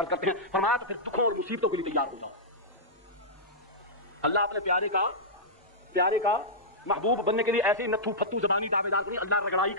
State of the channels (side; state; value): both; normal; correlation -0.12